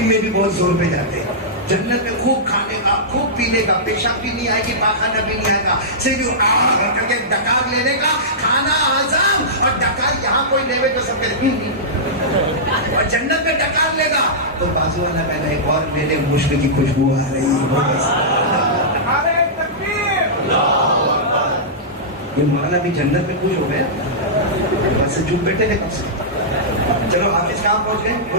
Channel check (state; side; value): normal; both; correlation -0.14